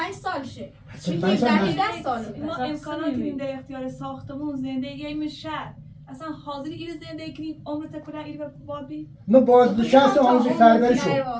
سال شه 45 سال 10 سال ما امکانات این در اختیار ساختمون زندگی این شهر اصلا حاضری این زندگی کنیم عمرت کلا این بابی ما بازنشست آموزش پرورش شد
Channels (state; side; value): identical; both; correlation 1.00